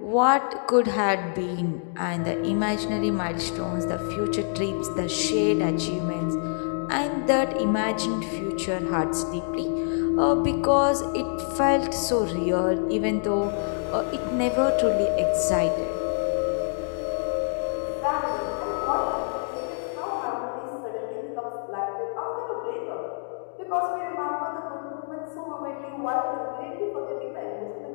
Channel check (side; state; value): right; silent; digital silence